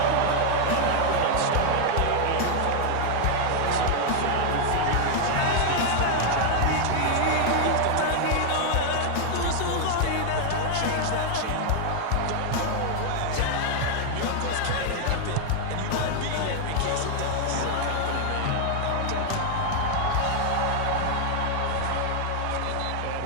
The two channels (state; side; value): different; both; correlation 0.00